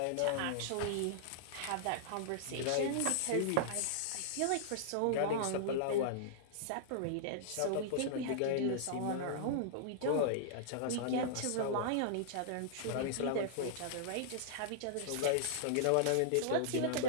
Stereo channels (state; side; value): different; both; correlation -0.01